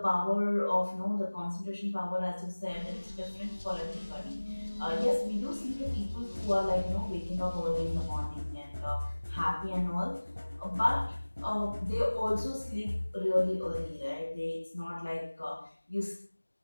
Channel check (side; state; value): both; inverted; correlation -1.00